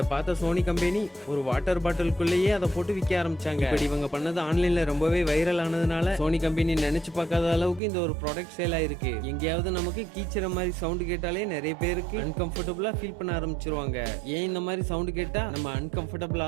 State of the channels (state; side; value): drops out; left; at 7.8 s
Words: பார்த்த சோனி கம்பெனி ஒரு வாட்டர் பாட்டிலுக்குள்ளேயே அதை போட்டு விற்க ஆரம்பிச்சாங்க. இப்படி இவங்க பண்ணது ஆன்லைன்ல ரொம்பவே வைரல் ஆனதுனால சோனி கம்பெனி நினைச்சு பார்க்காத அளவுக்கு இந்த ஒரு ப்ராடக்ட் சேல் ஆயிருக்கு. எங்கேயாவது நமக்கு கீச்சுற மாதிரி சவுண்ட் கேட்டாலே நிறைய பேருக்கு அன்கம்ஃபர்டபிளா ஃபீல் பண்ண ஆரம்பிச்சிருவாங்க. ஏன் இந்த மாதிரி சவுண்ட் கேட்டா நம்ம அன்கம்ஃபர்டபிள்